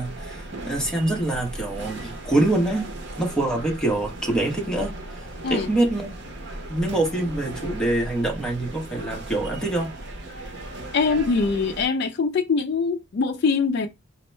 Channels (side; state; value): both; normal; correlation 0.54